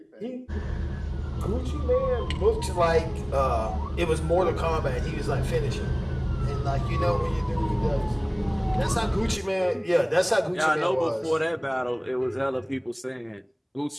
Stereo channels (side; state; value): both; identical; correlation 1.00